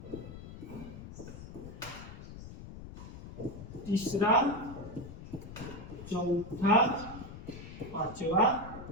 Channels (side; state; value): left; noise; rumble, 12 dB below the sound